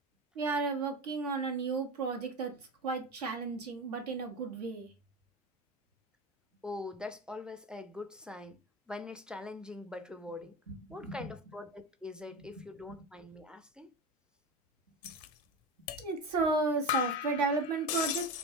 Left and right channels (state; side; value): normal; both; correlation 0.23